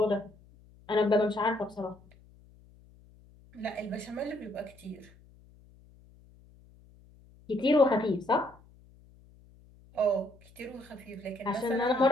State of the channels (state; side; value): noise; left; hum, 26 dB below the sound